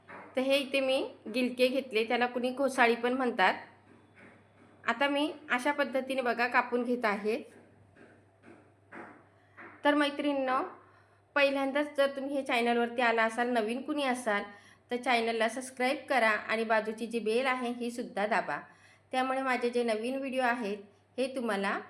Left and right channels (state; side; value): identical; both; correlation 1.00